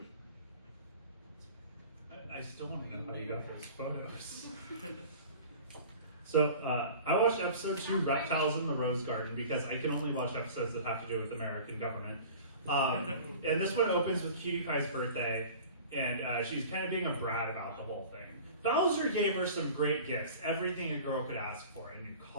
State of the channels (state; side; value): inverted; both; correlation -0.41